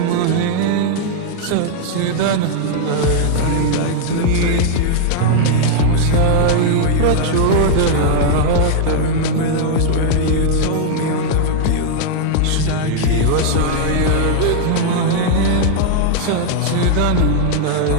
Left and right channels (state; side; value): different; both; correlation -0.01